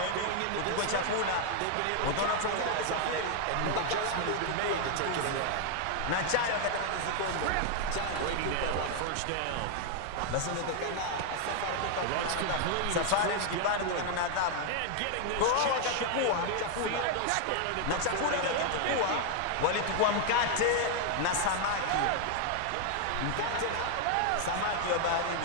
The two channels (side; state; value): both; different; correlation 0.00